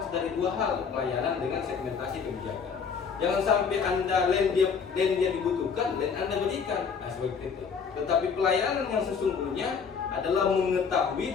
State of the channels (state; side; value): quieter; right; 6.1 dB